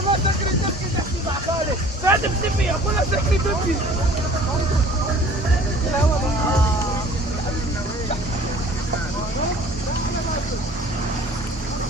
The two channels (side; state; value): both; normal; correlation 0.49